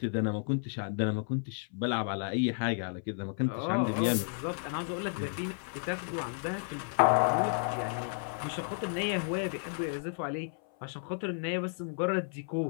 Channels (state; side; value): silent; right; 56 dB below the other